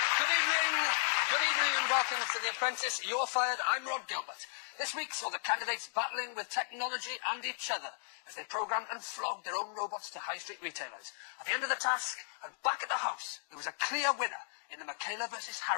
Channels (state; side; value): silent; right; digital silence